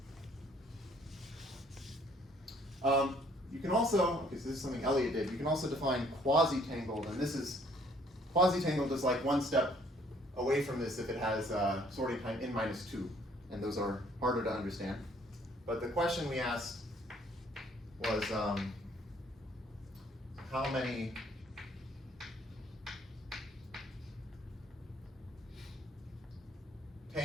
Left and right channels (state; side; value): normal; both; correlation 0.62